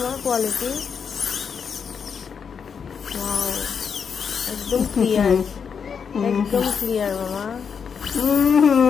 কোয়ালিটি। ওয়াও, একদম ক্লিয়ার, একদম ক্লিয়ার মামা।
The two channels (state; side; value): quieter; right; 6.6 dB